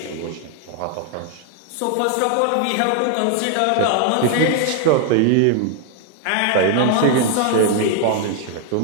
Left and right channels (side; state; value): both; different; correlation 0.00